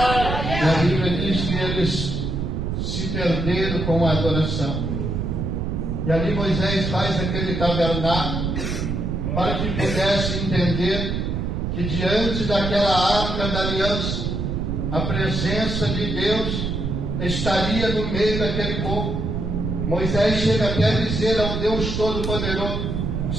E a Bíblia diz que eles se perderam com a adoração. E ali Moisés faz aquele tabernáculo para que pudesse entender que diante daquela arca da aliança, a presença de Deus estaria no meio daquele povo. Moisés chega até a dizer ao Deus Todo-Poderoso:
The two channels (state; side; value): noise; right; rumble, 2 dB below the sound